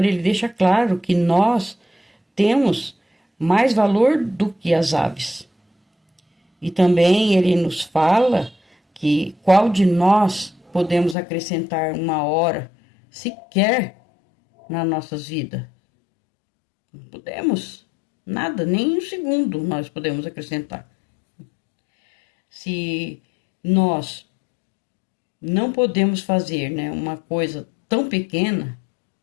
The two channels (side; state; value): right; drops out; at 11.2 s